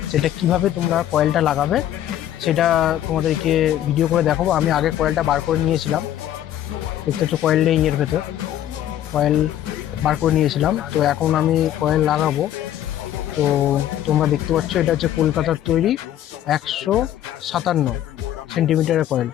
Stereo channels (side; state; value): right; quieter; 11.8 dB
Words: সেটা কিভাবে তোমরা কয়েলটা লাগাবে সেটা তোমাদেরকে ভিডিও করে দেখাবো। আমি আগে কয়েলটা বার করে নিয়েছিলাম, দেখতে হচ্ছে কয়েল নেই এর ভেতর, কয়েল বার করে নিয়েছিলাম। তো এখন আমি কয়েল লাগাবো। তো তোমরা দেখতে পাচ্ছ এটা হচ্ছে কলকাতার তৈরি 157 সেন্টিমিটারের কয়েল।